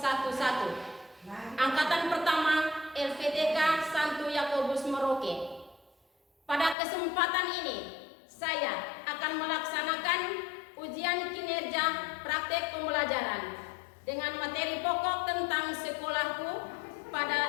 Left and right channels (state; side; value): drops out; right; at 6.8 s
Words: angkatan pertama LPTK Santo Yakobus Merauke. Pada kesempatan ini, saya akan melaksanakan ujian kinerja praktek pembelajaran dengan materi pokok tentang sekolahku